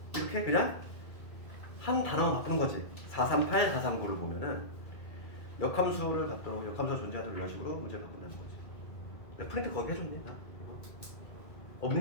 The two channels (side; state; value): right; late; 2.3 ms